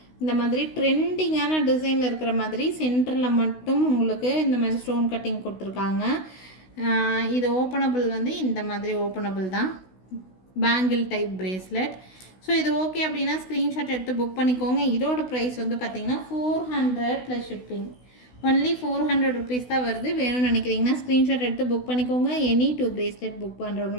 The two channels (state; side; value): late; right; 16 ms